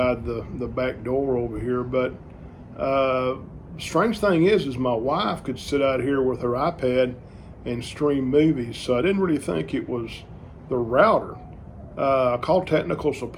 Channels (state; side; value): identical; both; correlation 1.00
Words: the back door over here. But strange thing is my wife could sit out here with her iPad and stream movies, so I didn't really think it was the router. I called technical